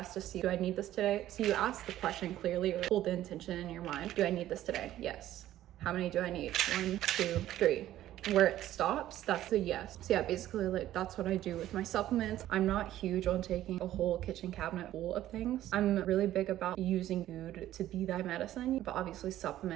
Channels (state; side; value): quieter; left; 13.4 dB